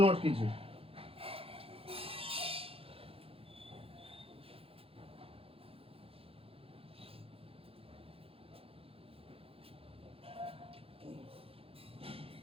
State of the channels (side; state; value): left; late; 0.27 ms